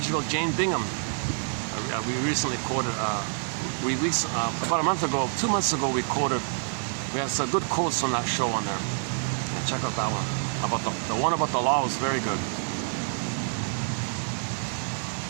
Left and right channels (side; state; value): left; silent; digital silence